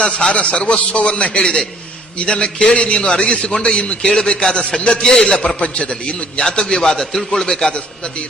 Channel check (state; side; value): normal; both; correlation 0.59